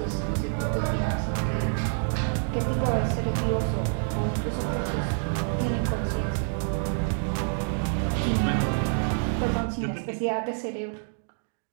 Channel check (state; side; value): silent; left; 60 dB below the other